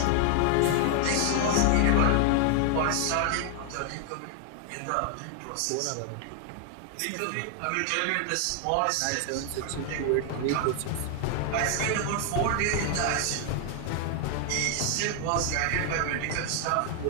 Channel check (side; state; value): both; different; correlation 0.00